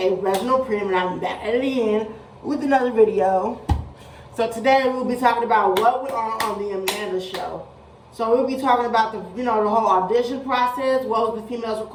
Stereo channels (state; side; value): identical; both; correlation 1.00